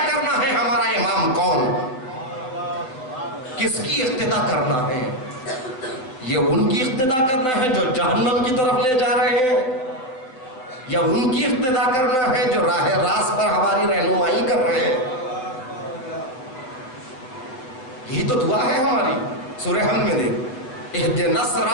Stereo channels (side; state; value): right; late; 7.8 ms